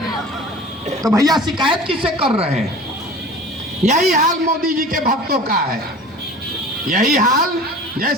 तो भैया शिकायत किससे कर रहे हैं? यही हाल मोदी जी के भक्तों का है। यही हाल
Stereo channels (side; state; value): both; normal; correlation 0.40